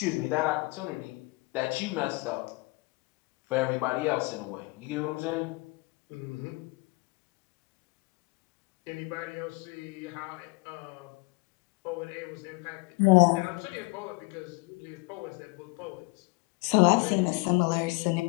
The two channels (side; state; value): right; quieter; 25.9 dB